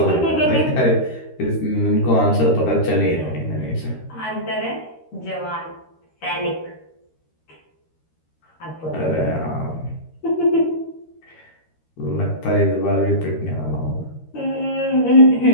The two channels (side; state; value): right; late; 13 ms